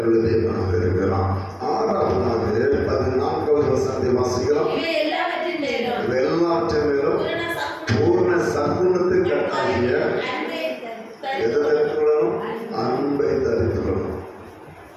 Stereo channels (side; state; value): both; identical; correlation 1.00